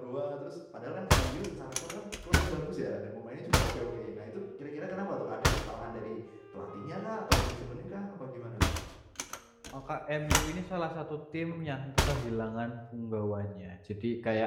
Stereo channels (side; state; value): both; identical; correlation 1.00